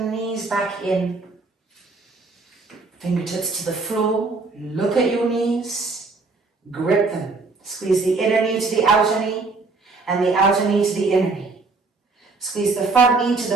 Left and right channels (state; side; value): quieter; left; 3.9 dB